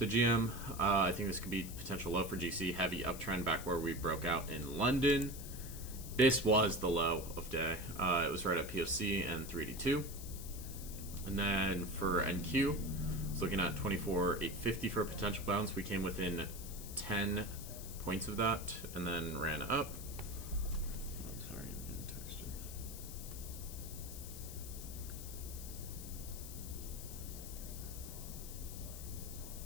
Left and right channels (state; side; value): noise; left; hiss, 11 dB below the sound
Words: GM, I think this could be potential low for GC. Heavy uptrend back where we broke out in London. This was the low of day. It was right at POC and 382. And then for NQ, it's looking at 24,850 for a potential bounce. We came within 10 points of that and then ran up. Sorry, I'm getting texted.